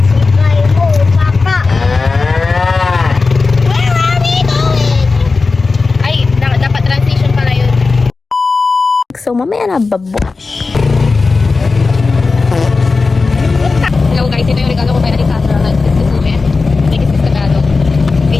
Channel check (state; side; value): quieter; right; 4.0 dB